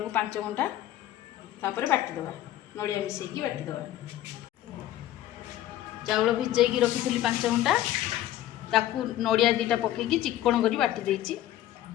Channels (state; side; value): quieter; right; 13.4 dB